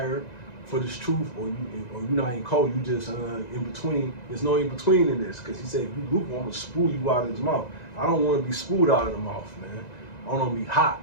for this truth, or you're not in cold, you just in between. There's no in between in this, because he said, if you lukewarm, I'm gonna spew you out of his mouth. I don't want to be spewed out of the mouth, man. I want to be hot,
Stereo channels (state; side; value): late; right; 1.9 ms